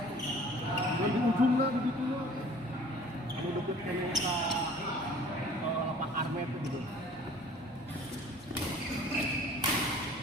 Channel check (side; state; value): both; normal; correlation 0.50